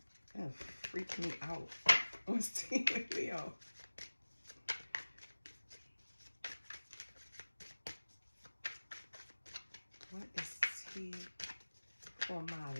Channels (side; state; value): both; inverted; correlation -1.00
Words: Gonna freak me out. What's tea with Leo? What is tea for my